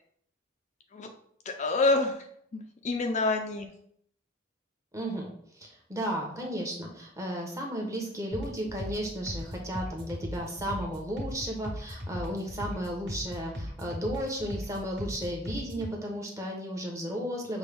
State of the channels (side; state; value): both; normal; correlation 0.40